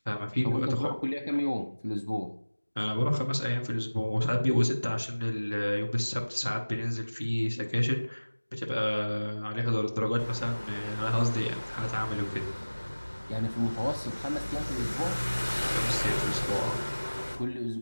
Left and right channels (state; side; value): inverted; both; correlation -1.00